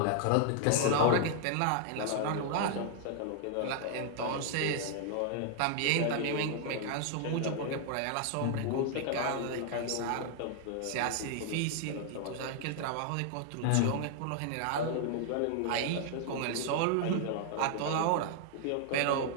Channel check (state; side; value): different; both; correlation 0.00